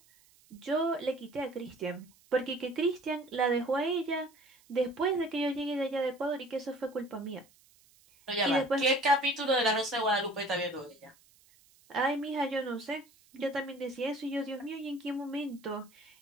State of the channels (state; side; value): noise; right; hiss, 29 dB below the sound